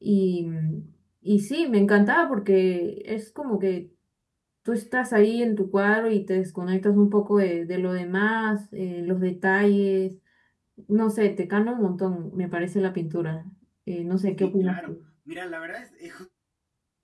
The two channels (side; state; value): both; identical; correlation 1.00